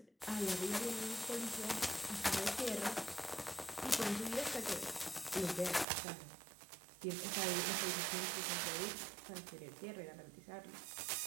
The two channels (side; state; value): left; drops out; at 5.9 s